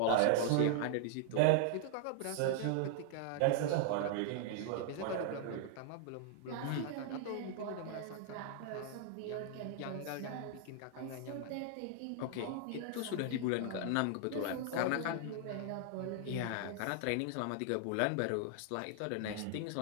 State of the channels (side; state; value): both; different; correlation 0.00